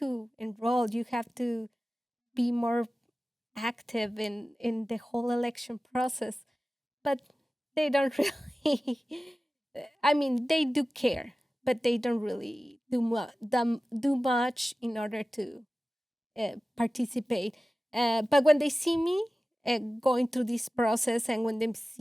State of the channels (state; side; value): normal; both; correlation 0.96